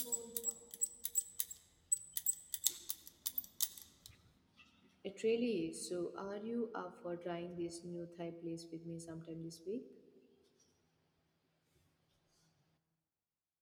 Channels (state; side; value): identical; both; correlation 1.00